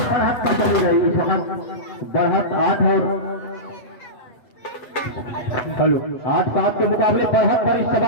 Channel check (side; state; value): right; late; 7.9 ms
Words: बढ़त पर चली गई। इस वक्त बढ़त 8 और 8-7 के मुकाबले बढ़त पर इस